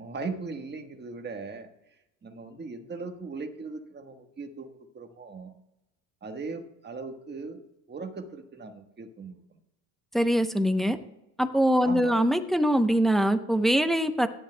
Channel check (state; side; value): normal; both; correlation 0.88